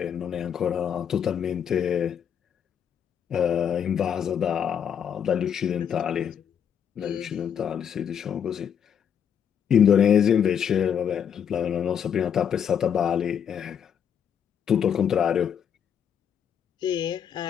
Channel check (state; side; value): quieter; right; 8.2 dB